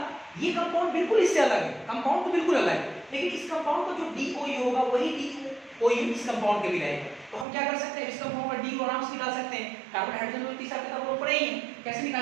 ये कंपाउंड बिल्कुल इससे अलग है, कंपाउंड तो बिल्कुल अलग है, लेकिन इस कंपाउंड का जो DOU होगा वही DOU इस कंपाउंड के भी रहेगा। तो हम क्या कर सकते हैं, इस कंपाउंड का DOU आराम से निकाल सकते हैं। कार्बन हाइड्रोजन में तीसरा किताब लोग पढ़े ही हैं, कैसे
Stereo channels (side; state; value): left; drops out; at 7.5 s